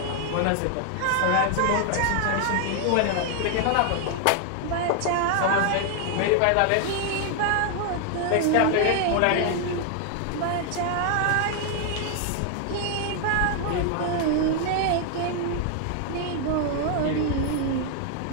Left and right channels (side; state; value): both; different; correlation 0.00